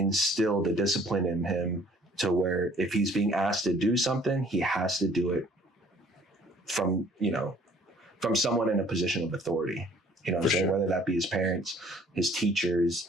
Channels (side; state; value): both; normal; correlation 0.57